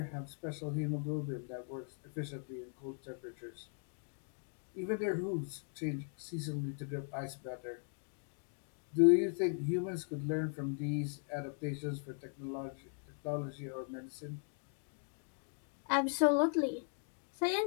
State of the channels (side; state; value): right; silent; 52 dB below the other